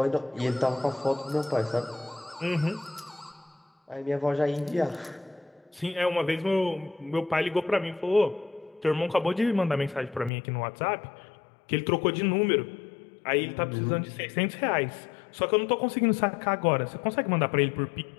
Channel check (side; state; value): right; drops out; at 10.3 s